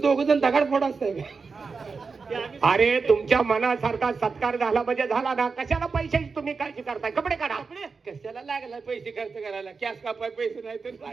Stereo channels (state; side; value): quieter; left; 4.8 dB